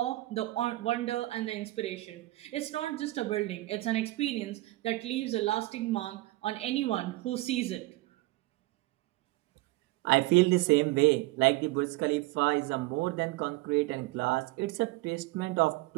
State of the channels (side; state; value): left; quieter; 19.4 dB